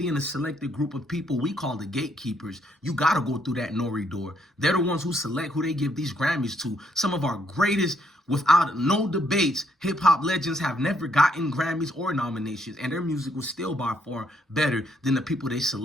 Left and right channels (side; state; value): both; normal; correlation 0.72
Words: and a selected group of people we call the gatekeepers. You got to go through that Nori door. They're the ones who select who they give these Grammys to. Some of our greatest, without no debates, hip-hop legends have never gotten Grammys or nominations, and their music was still by far better than the people they